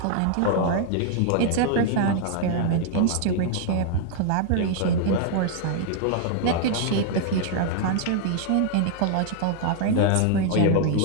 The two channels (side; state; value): both; different; correlation 0.00